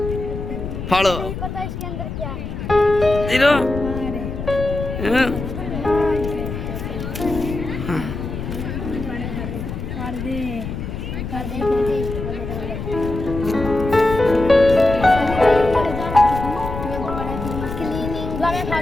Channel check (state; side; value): noise; left; rumble, 6 dB below the sound